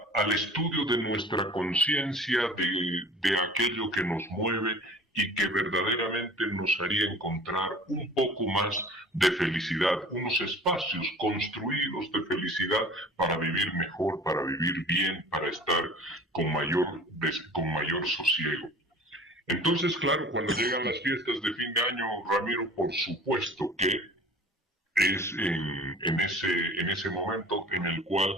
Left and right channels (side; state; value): both; normal; correlation 0.44